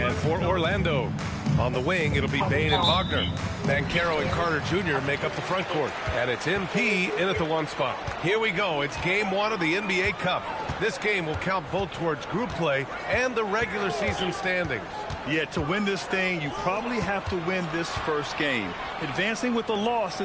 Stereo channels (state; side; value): identical; both; correlation 1.00